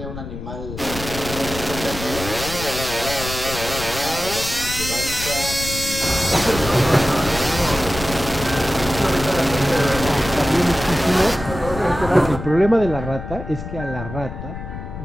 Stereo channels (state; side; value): noise; left; rumble, 9 dB below the sound